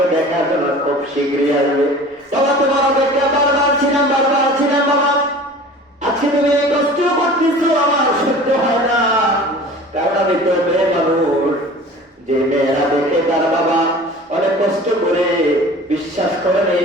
দেখার জন্য খুব শীঘ্রই আসবে। বাবা তোমার অপেক্ষা বারবার ছিলাম বাবা, আজকে তুমি এই কষ্ট করতেছো আমার সহ্য হয় না, কারণ আমি তো মেয়ে মানুষ। যে মেয়েরা দেখে তার বাবা অনেক কষ্ট করে, বিশ্বাস করেন এই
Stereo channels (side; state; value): both; normal; correlation 0.42